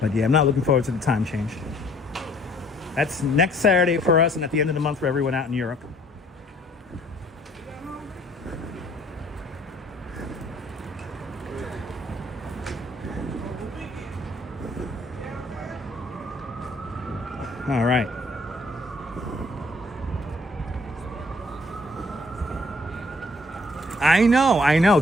yeah, I'm not looking forward to the time change. That's next Saturday for us and at the end of the month for everyone out in Europe. All right. I know,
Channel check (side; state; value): both; normal; correlation 0.59